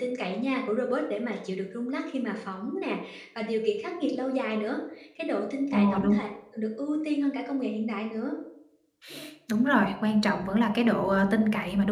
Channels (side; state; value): both; identical; correlation 1.00